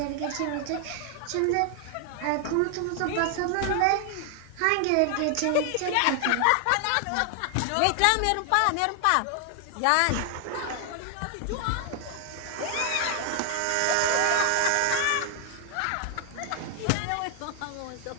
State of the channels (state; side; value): different; both; correlation 0.00